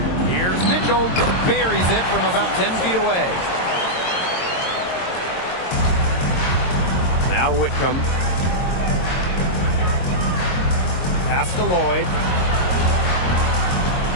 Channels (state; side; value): late; right; 22 ms